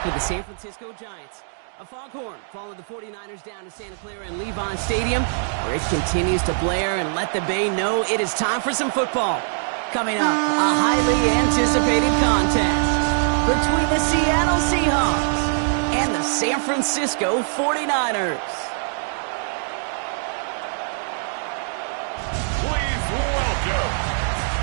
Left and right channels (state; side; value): silent; left; digital silence